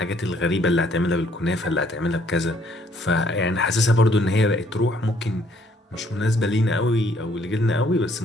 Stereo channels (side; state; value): both; normal; correlation 0.65